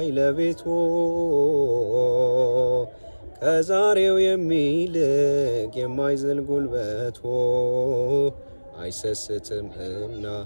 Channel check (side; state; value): both; inverted; correlation -1.00